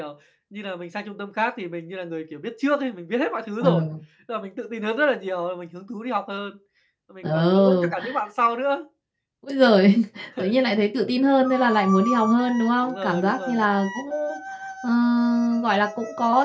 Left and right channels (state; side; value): identical; both; correlation 1.00